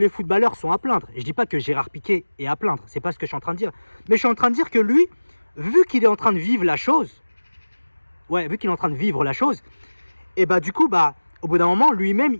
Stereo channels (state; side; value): inverted; both; correlation -1.00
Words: footballeurs sont à plaindre. Je ne dis pas que Gérard Piqué est à plaindre. C'est pas ce que je suis en train de dire. Mais je suis en train de dire que lui, vu qu'il est en train de vivre la chose, et bah du coup, au bout d'un moment, lui-même,